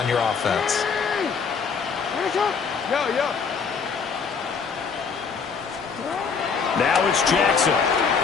your offense. Now it's Jackson.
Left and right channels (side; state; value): right; quieter; 5.7 dB